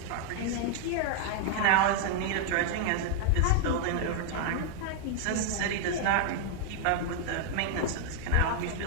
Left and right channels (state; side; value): different; both; correlation 0.00